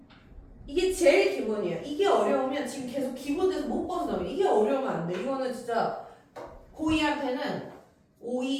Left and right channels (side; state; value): both; identical; correlation 1.00